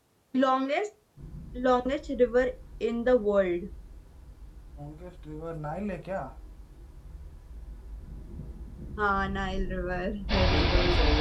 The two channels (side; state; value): both; identical; correlation 1.00